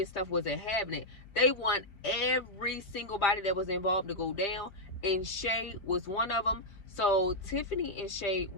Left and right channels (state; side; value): late; right; 5.0 ms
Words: stuff wasn't having it. They want every single body that was involved to go down, and Shay was one of them. So Tiffany and Shay